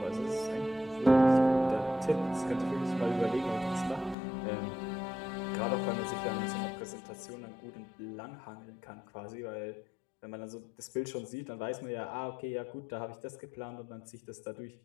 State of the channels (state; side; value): drops out; right; at 4.2 s